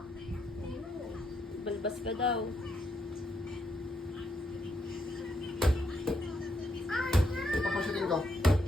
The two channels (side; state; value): both; normal; correlation 0.77